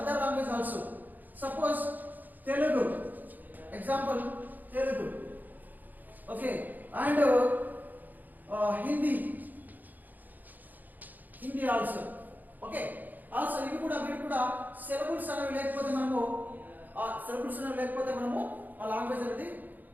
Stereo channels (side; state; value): left; late; 0.084 ms